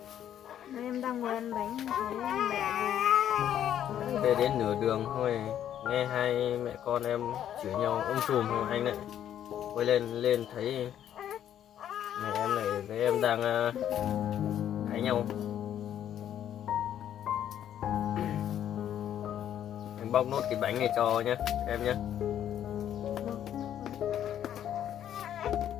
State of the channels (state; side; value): quieter; right; 10.5 dB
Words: Nay em đang ngồi ăn bánh thấy em mẹ về. Về đến nửa đường thôi nghe hai mẹ con em chửi nhau sùm thôi anh lại quay lên thấy mẹ em này với em đang cãi nhau. Anh bóc nốt cái bánh này cho nhé em nhé.